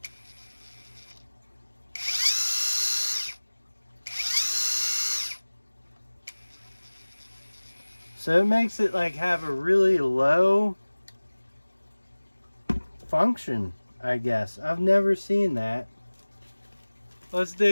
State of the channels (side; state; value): both; inverted; correlation -1.00